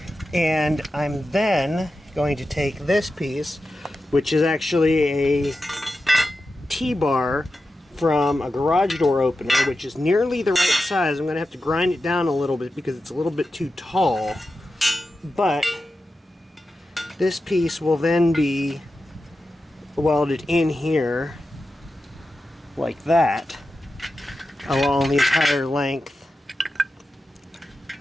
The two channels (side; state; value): both; normal; correlation 0.91